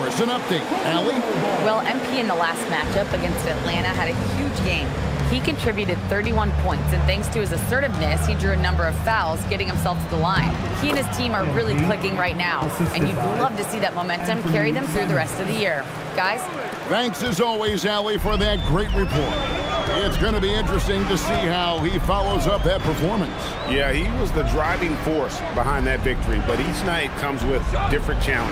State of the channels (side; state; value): both; identical; correlation 1.00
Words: us. An update. Allie? Well, MP in the last matchup against Atlanta had a huge game. He contributed 31 points, and thanks to his assertiveness, he drew a number of fouls, getting himself to the line. He and his team are really clicking right now, and you'd love to see that momentum carry them through the rest of the year. guys. Thanks as always, Allie, for that great report. It's going to be interesting to see how he follows up that performance. Yeah, he was the driving force behind that victory, but each night comes with different